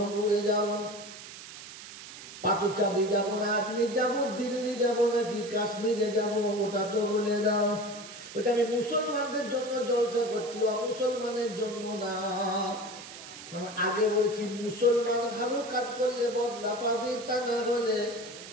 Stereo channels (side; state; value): right; noise; hiss, 14 dB below the sound